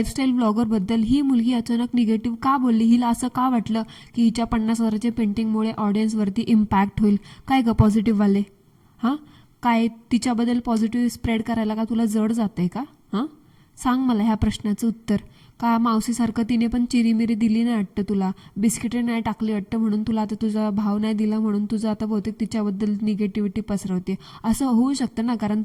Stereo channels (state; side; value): identical; both; correlation 1.00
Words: ब्लॉगरबद्दल ही मुलगी अचानक निगेटिव्ह का बोलली? हिला असं का वाटलं की हिच्या 50,000च्या पेंटिंगमुळे ऑडियन्सवरती इम्पॅक्ट होईल? काय ग पॉझिटिव्हवाले, हां? काय तिच्याबद्दल पॉझिटिव्ह स्प्रेड करायला का तुला जड जाते का? हां, सांग मला ह्या प्रश्नाचं उत्तर. का मावशीसारखं तिने पण चिरीमिरी दिली नाही वाटतं तुला, बिस्किटे नाही टाकली वाटतं, म्हणून तुला आता तुझा भाव नाही दिला म्हणून तुझं आता बहुतेक तिच्याबद्दल निगेटिव्हिटी पसरवते? असं होऊ शकतं ना, कारण